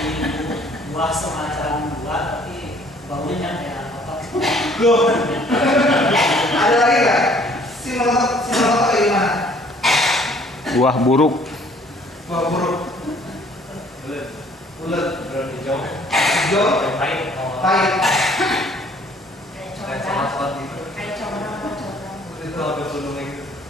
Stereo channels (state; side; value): normal; both; correlation 0.58